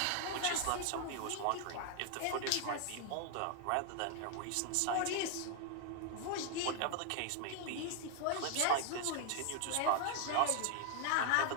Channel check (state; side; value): different; both; correlation 0.00